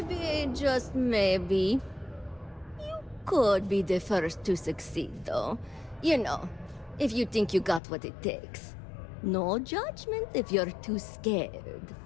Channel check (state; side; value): drops out; right; at 7.8 s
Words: just maybe, you could be the first to succeed, though. You know, if you think you got what it takes. No judgment if you're too scared.